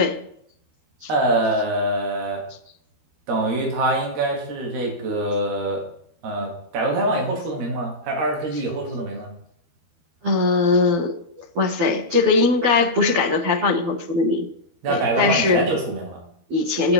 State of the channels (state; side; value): late; left; 12 ms